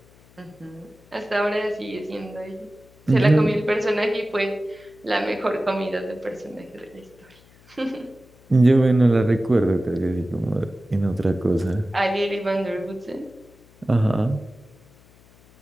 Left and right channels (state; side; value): noise; left; hum, 28 dB below the sound